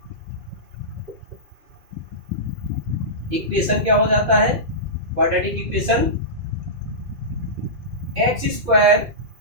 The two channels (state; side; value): late; left; 2.6 ms